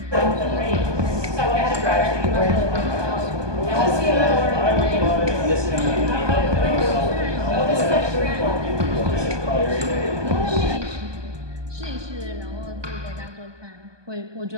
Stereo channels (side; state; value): left; late; 1.2 ms